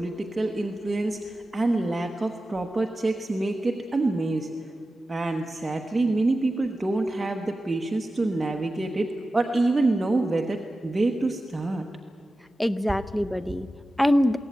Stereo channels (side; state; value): both; normal; correlation 0.94